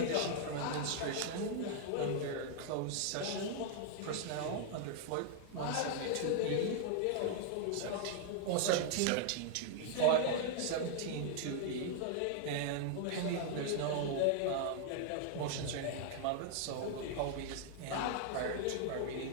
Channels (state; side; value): different; both; correlation 0.00